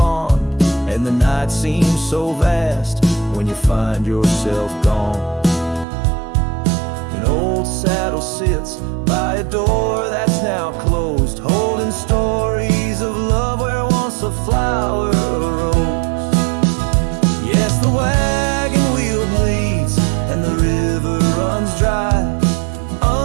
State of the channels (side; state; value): left; drops out; at 5.9 s